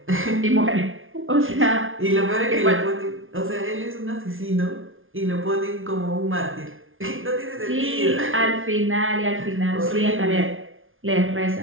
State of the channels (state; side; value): late; left; 0.59 ms